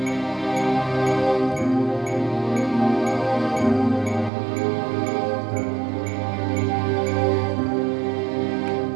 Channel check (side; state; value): left; drops out; at 4.3 s